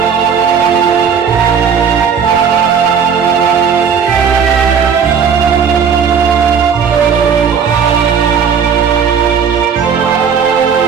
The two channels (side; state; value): left; quieter; 6.8 dB